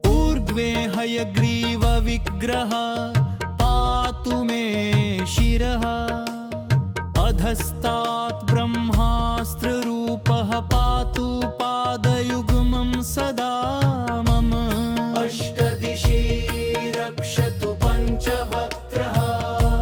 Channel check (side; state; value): both; identical; correlation 1.00